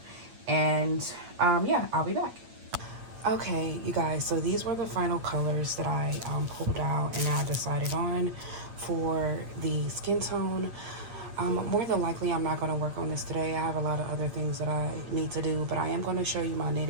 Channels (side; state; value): left; late; 8.8 ms